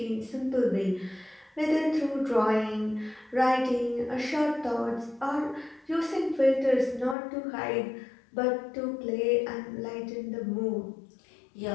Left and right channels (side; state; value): right; drops out; at 7.2 s